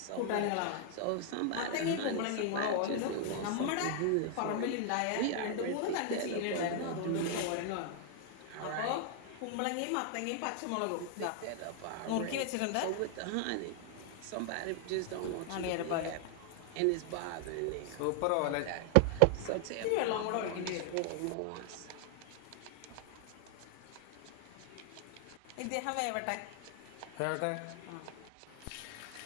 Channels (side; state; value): both; different; correlation 0.00